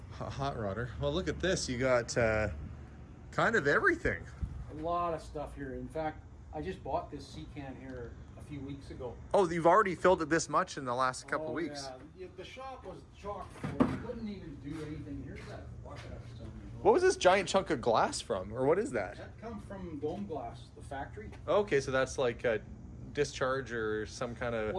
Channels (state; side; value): identical; both; correlation 1.00